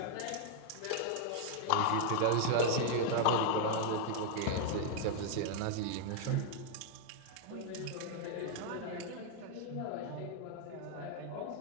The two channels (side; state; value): both; different; correlation 0.00